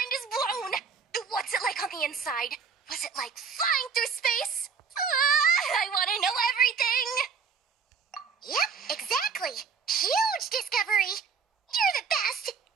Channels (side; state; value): left; quieter; 5.8 dB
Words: is blown! What's it like on the inside? Was it like flying through space? I want to know everything! Yep, exactly. Huge discovery. You're the best.